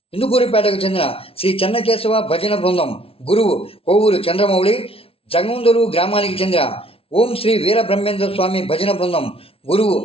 ఇందుకూరిపేటకు చెందిన శ్రీ చెన్నకేశవ భజన బృందం గురువు కోవూరు చంద్రమౌళి, జంగుందూరు గ్రామానికి చెందిన ఓం శ్రీ వీరబ్రహ్మేంద్ర స్వామి భజన బృందం గురువు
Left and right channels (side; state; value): right; late; 0.27 ms